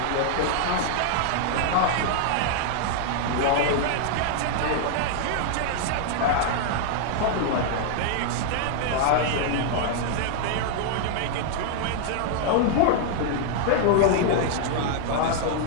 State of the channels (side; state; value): both; different; correlation 0.00